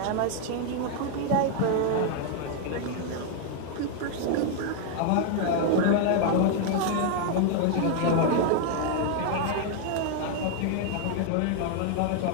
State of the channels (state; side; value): different; both; correlation 0.00